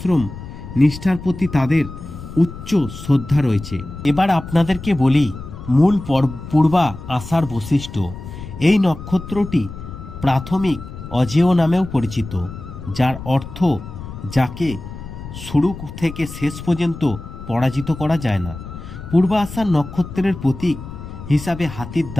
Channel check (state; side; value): noise; left; rumble, 12 dB below the sound